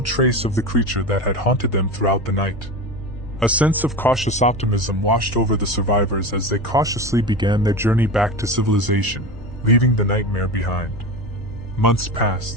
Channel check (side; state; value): both; normal; correlation 0.26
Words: trace of the creature that had haunted them throughout the night. A sense of cautious optimism washed over the survivors as they cautiously began their journey back to civilization, leaving the nightmare behind. Months